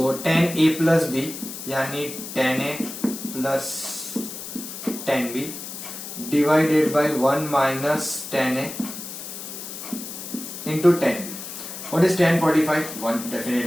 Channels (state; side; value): noise; left; hiss, 10 dB below the sound